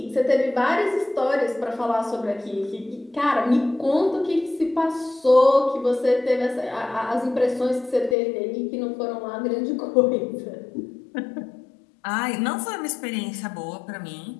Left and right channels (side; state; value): right; drops out; at 8.2 s